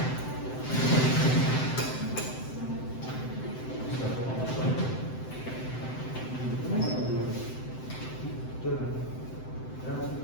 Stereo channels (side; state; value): right; late; 7.8 ms